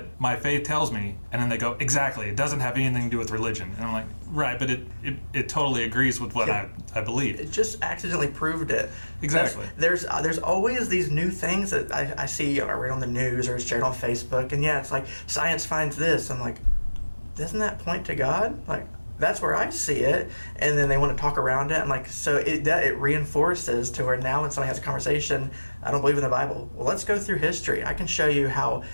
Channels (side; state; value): both; inverted; correlation -1.00